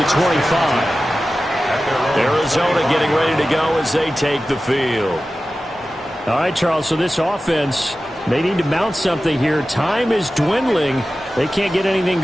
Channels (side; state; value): both; normal; correlation 0.95